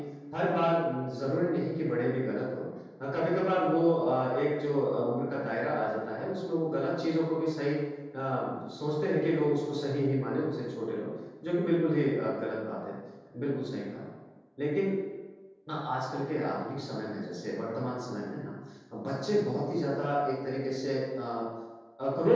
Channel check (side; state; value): both; identical; correlation 1.00